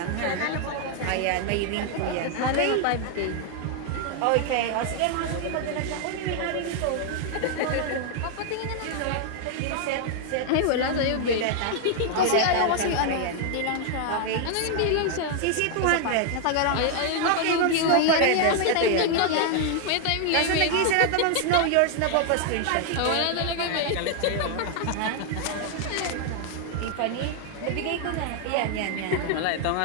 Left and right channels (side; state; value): both; different; correlation 0.00